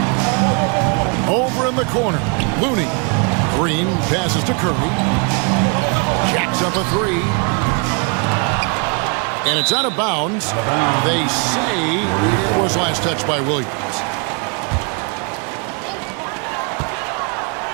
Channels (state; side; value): quieter; left; 36.2 dB